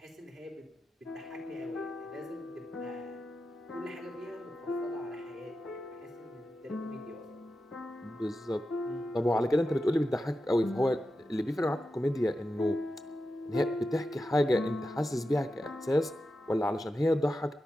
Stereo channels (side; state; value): both; normal; correlation 0.90